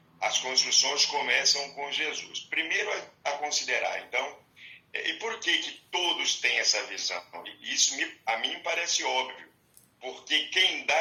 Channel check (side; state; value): both; identical; correlation 1.00